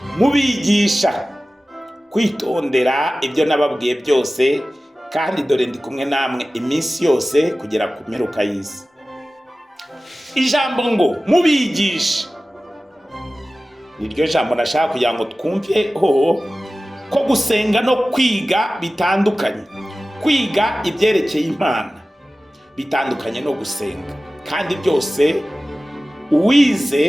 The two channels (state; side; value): normal; both; correlation 0.96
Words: mubigisha kwitondera ibyo nababwiye byose, kandi dore ndi kumwe namwe iminsi yose kugera ku mperuka y'isi. Ijambo ngo mubigisha niryo jambo nashaka kugira ngo twumveho ko gusenga no kwiga bitandukanye. Kwiga ibyerekeye Imana bitandukanye no gusenga, kandi byose